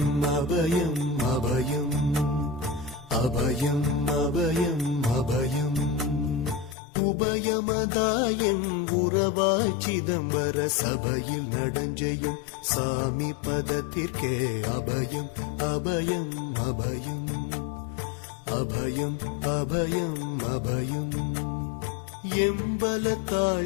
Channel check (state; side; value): drops out; right; at 6.8 s